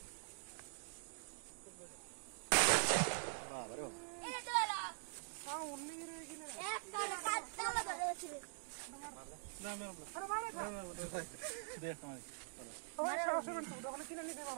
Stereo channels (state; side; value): silent; left; digital silence